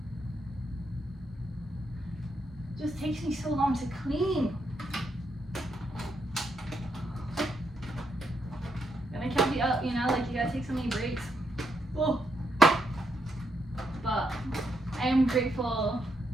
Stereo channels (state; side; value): normal; both; correlation 0.79